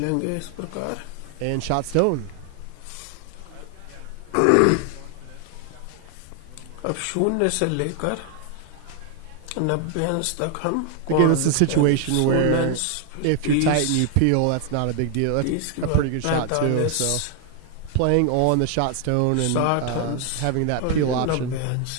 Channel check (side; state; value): both; different; correlation 0.00